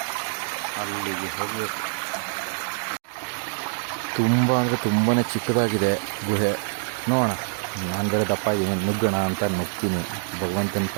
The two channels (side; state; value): left; silent; digital silence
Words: ಅಲ್ಲಿಗೆ ಹೋಗಬೇಕು. ತುಂಬ ಅಂದರೆ ತುಂಬಾ ಚಿಕ್ಕದಾಗಿದೆ ಗುಹೆ. ನೋಡೋಣ, ನಾನು ಬೇರೆ ದಪ್ಪ ಇದ್ದೀನಿ, ನುಗ್ಗೋಣ ಅಂತ ನುಗ್ತೀನಿ. ಭಗವಂತನ